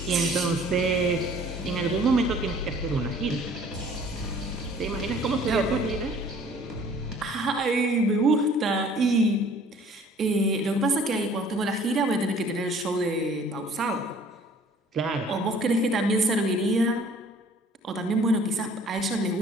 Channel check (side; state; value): both; normal; correlation 0.54